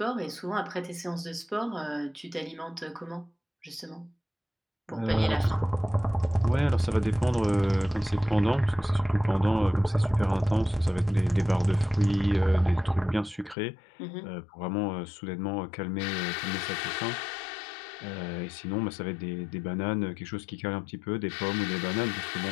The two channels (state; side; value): drops out; right; at 13.6 s